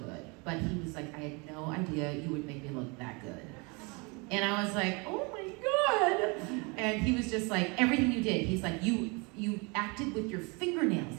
but he was like, I had no idea you would make me look that good. And I was like, oh my God. And he was just like, everything you did, he's like, you acted with your fingernails.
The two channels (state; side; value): quieter; left; 29.8 dB